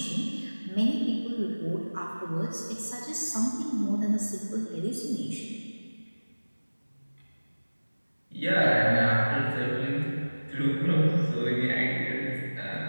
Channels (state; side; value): inverted; both; correlation -1.00